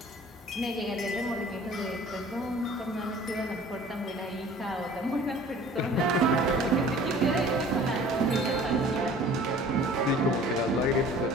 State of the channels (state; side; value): normal; both; correlation 0.48